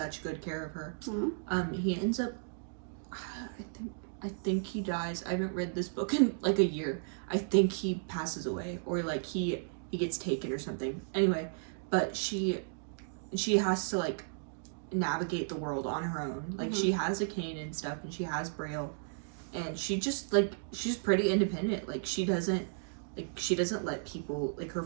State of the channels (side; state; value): left; silent; digital silence